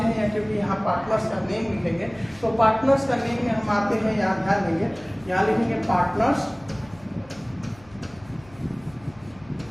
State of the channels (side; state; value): left; noise; hum, 25 dB below the sound